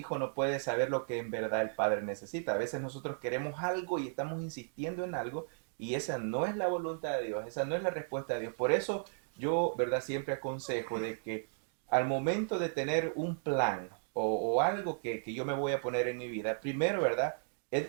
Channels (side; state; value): left; silent; digital silence